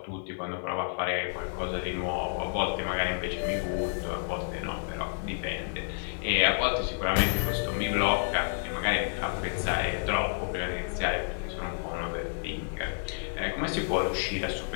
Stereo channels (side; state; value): right; silent; 58 dB below the other